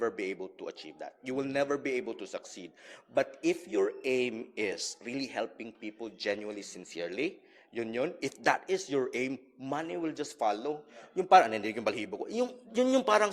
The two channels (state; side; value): identical; both; correlation 1.00